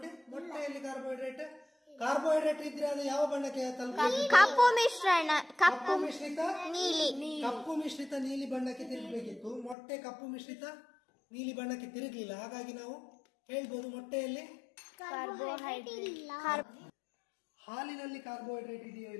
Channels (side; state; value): right; drops out; at 9.8 s